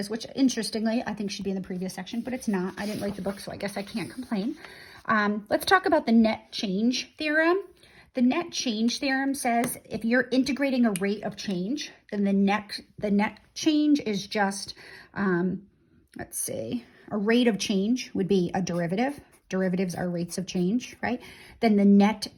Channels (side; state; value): both; identical; correlation 1.00